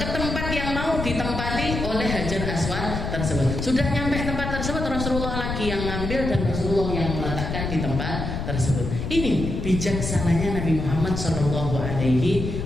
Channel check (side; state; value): left; noise; rumble, 4 dB below the sound